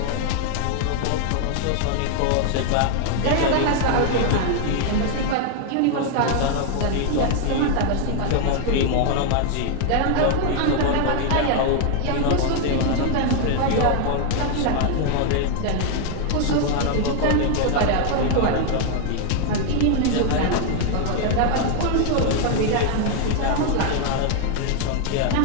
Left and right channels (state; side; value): different; both; correlation 0.00